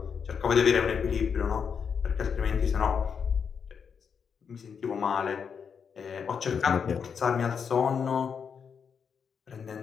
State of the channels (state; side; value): quieter; right; 6.6 dB